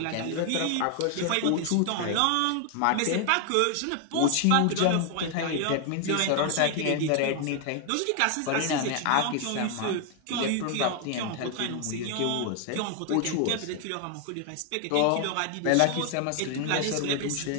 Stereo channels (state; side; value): different; both; correlation 0.00